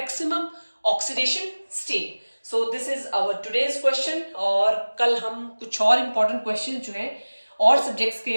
oxidation state. So this is our today's question, और कल हम कुछ और important questions जो हैं और सब्जेक्ट्स के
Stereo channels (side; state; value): both; inverted; correlation -1.00